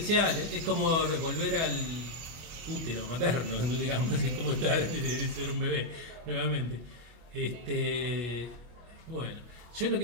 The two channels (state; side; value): late; left; 25 ms